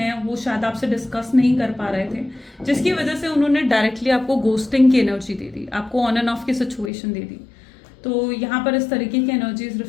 वो शायद आपसे डिस्कस नहीं कर पा रहे थे, जिसकी वजह से उन्होंने डायरेक्टली आपको गोस्टिंग की एनर्जी दे दी, आपको ऑन एंड ऑफ की सिचुएशन दे दी, तो यहाँ पर इस तरीके की एनर्जीज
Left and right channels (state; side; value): drops out; right; at 6.9 s